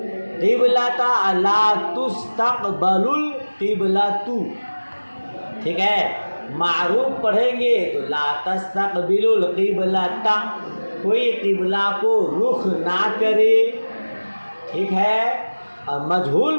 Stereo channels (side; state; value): both; inverted; correlation -1.00